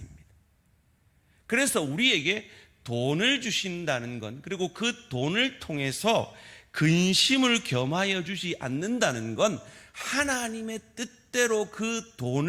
그래서 우리에게 돈을 주신다는 건, 그리고 그 돈을 통해서 근심을 겸하여 주지 않는다는 건 하나님의 뜻대로 그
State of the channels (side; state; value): both; identical; correlation 1.00